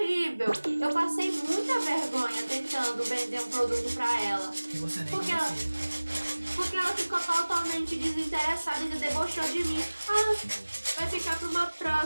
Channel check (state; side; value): inverted; both; correlation -1.00